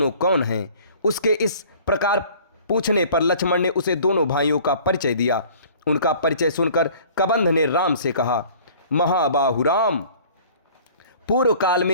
कौन हैं? उसके इस प्रकार पूछने पर लक्ष्मण ने उसे दोनों भाइयों का परिचय दिया। उनका परिचय सुनकर कबंध ने राम से कहा, महाबाहु राम, पूर्व काल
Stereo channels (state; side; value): inverted; both; correlation -0.50